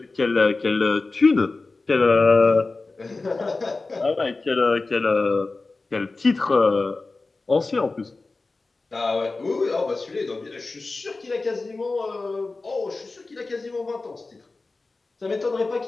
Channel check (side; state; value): right; quieter; 3.6 dB